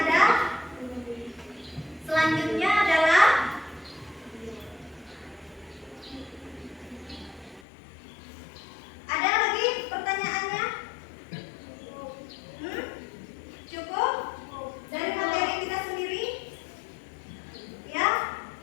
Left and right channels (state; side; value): drops out; right; at 7.6 s